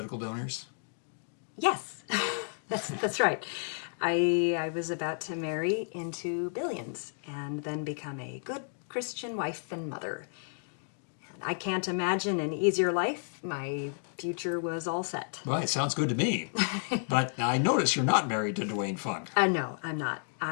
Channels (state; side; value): silent; right; digital silence